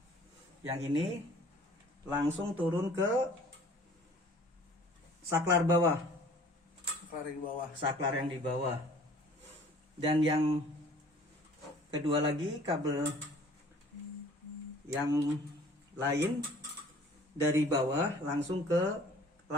yang ini langsung turun ke saklar bawah, saklar yang di bawah. Dan yang kedua lagi, kabel yang lain dari bawah langsung ke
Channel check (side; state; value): both; normal; correlation 0.51